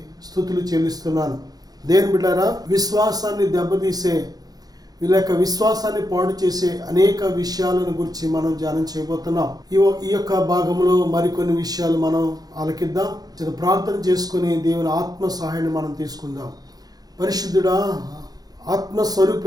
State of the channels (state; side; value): late; left; 0.19 ms